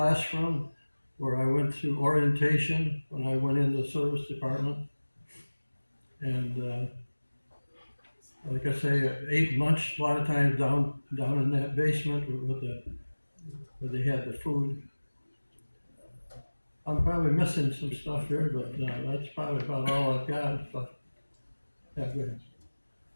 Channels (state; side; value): inverted; both; correlation -1.00